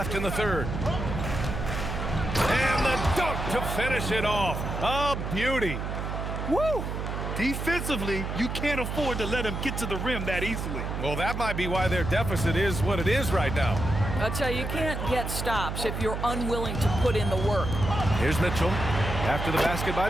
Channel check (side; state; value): right; noise; hum, 4 dB below the sound